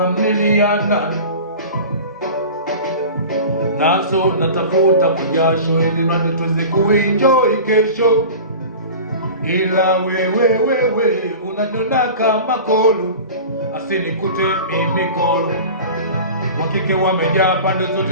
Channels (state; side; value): inverted; both; correlation -0.36